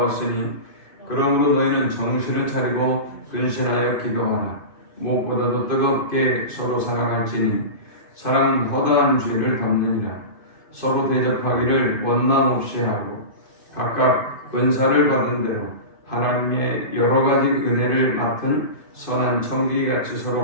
그러므로 너희는 정신을 차리고 근신하여 기도하라. 무엇보다도 뜨겁게 서로 사랑할지니 사랑은 허다한 죄를 덮느니라. 서로 대접하기를 원망 없이 하고 각각 은사를 받은 대로 하나님의 여러 가지 은혜를 맡은 선한 청지기같이 서로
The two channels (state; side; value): late; right; 2.5 ms